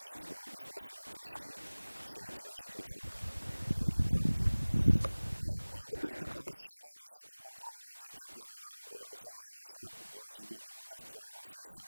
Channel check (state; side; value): inverted; both; correlation -1.00